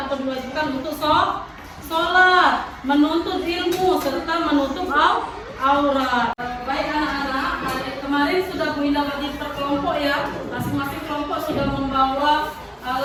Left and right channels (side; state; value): both; identical; correlation 1.00